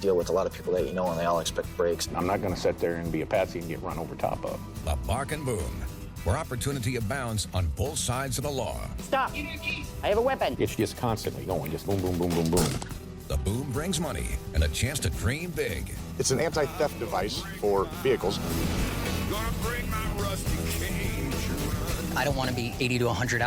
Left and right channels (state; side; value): identical; both; correlation 1.00